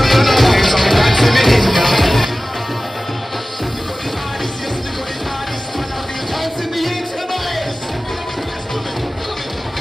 murder, so me God say me in ya.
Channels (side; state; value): both; normal; correlation 0.97